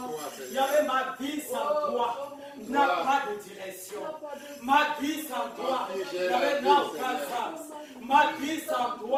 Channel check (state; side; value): identical; both; correlation 1.00